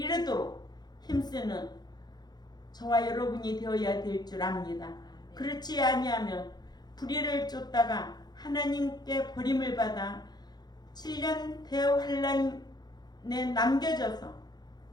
힘쓰는 저와 여러분이 되어야 될 줄 압니다. 그렇지 아니하면 불의를 쫓다가 하나님께 버림을 받아 7년 대환란에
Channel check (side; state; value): right; late; 0.20 ms